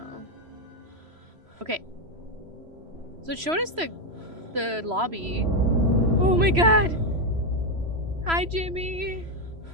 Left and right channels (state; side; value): late; left; 3.0 ms